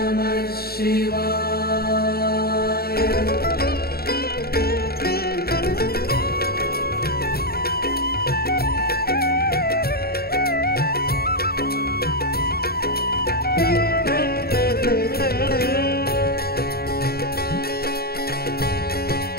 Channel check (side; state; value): right; late; 0.45 ms